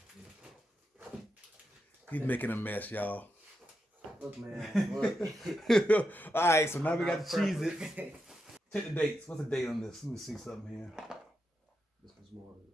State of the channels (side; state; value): both; normal; correlation 0.86